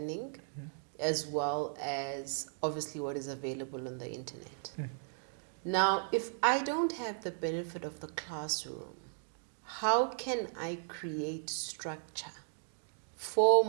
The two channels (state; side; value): silent; left; digital silence